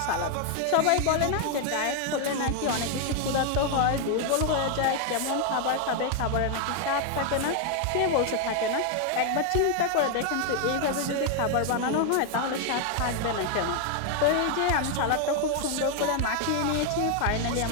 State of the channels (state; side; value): different; both; correlation 0.01